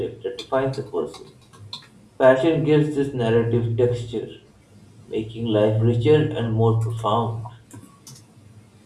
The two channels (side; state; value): both; identical; correlation 1.00